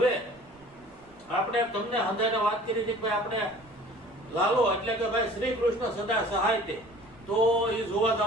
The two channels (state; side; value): noise; right; rumble, 29 dB below the sound